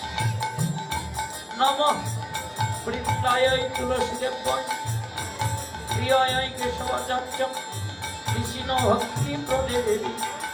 নমঃ বৃন্দায় তুলসীদেবায় প্রিয়ায় কেশবাচার্যং কৃষ্ণ ভক্তি প্রদে দেবী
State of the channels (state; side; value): identical; both; correlation 1.00